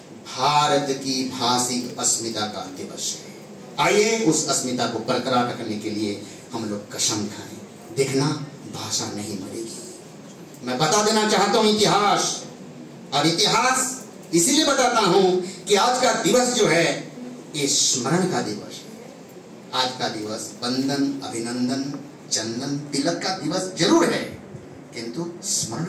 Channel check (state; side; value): identical; both; correlation 1.00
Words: भारत की भाषिक अस्मिता का दिवस है। आइए उस अस्मिता को बरकरार रखने के लिए हम लोग कसम खाएं। देखना भाषा नहीं मरेगी। मैं बता देना चाहता हूं इतिहास, और इतिहास इसीलिए बताता हूं कि आज का दिवस जो है ये स्मरण का दिवस है। आज का दिवस वंदन, अभिनंदन, चंदन, तिलक का दिवस जरूर है, किंतु स्मरण